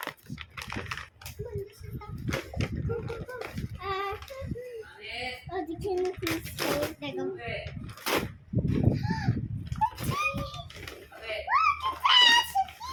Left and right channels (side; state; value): both; identical; correlation 1.00